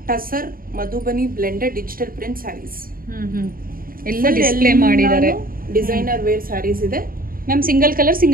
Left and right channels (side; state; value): left; late; 0.42 ms